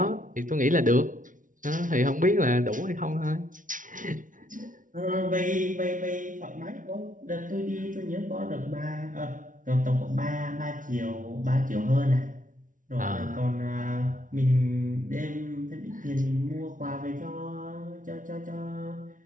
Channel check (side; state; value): left; late; 0.38 ms